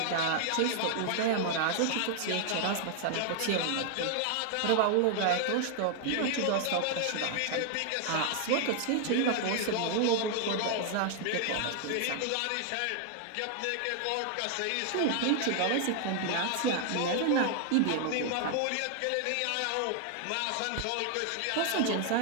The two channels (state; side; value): different; both; correlation 0.00